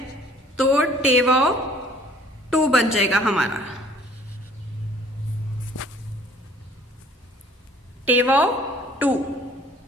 तो टे वाव टू बन जाएगा हमारा। टे वाव टू,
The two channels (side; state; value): both; normal; correlation 0.54